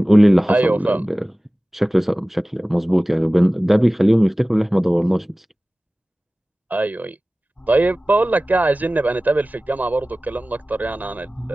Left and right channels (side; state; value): both; normal; correlation 0.98